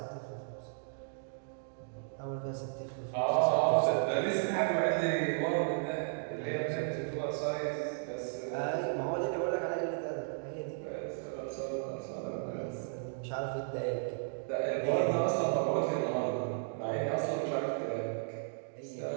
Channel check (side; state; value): left; silent; digital silence